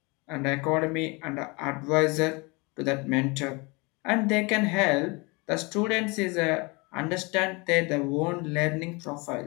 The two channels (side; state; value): right; quieter; 27.6 dB